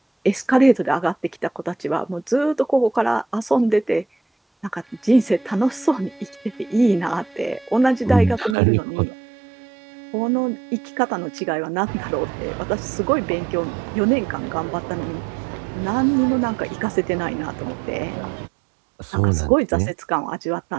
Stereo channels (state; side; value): drops out; left; at 8.6 s